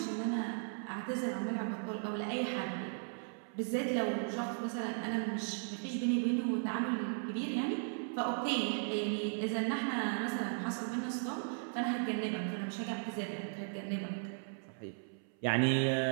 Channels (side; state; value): left; silent; 53 dB below the other